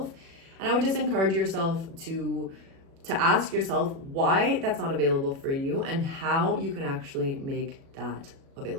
And I would just encourage yourself to ask yourself why that's not available for you and how you can actually make that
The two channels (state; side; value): late; left; 36 ms